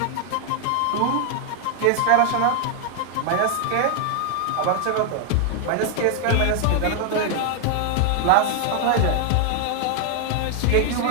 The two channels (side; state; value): both; different; correlation 0.00